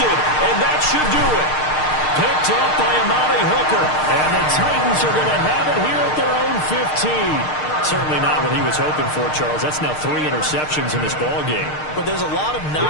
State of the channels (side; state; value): right; late; 6.6 ms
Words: and that should do it. Picked up by Amari Hooker. And the Titans are going to have it here at their own 15. Certainly not what he was hoping for, Charles. That's now 3 interceptions in this ballgame. But there's a lot of